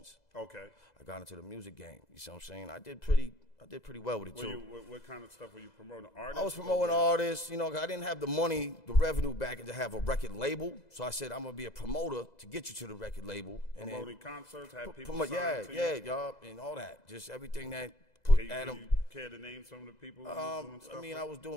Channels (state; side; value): late; right; 2.0 ms